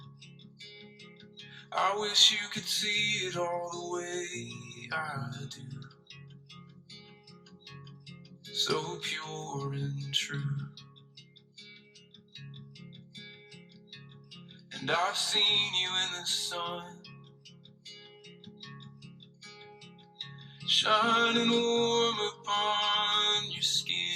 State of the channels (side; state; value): both; identical; correlation 1.00